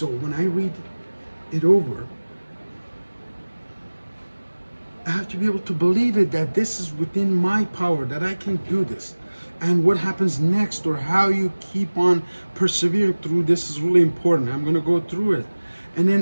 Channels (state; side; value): inverted; both; correlation -1.00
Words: when I read it over, I have to be able to believe it, that this is within my power, that I can do this. And what happens next, or how you keep on persevering through this, is really important. I'm going to go through it. And